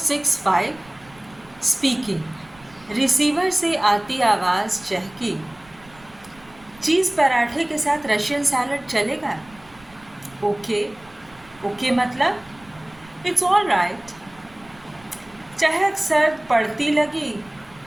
speaking. रिसीवर से आती आवाज़ चहकी। चीज़ पराठे के साथ रशियन सैलड चलेगा? ओके। ओके मतलब इट्स ऑल राइट। चहक सर्द पड़ती लगी।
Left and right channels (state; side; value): noise; right; rumble, 25 dB below the sound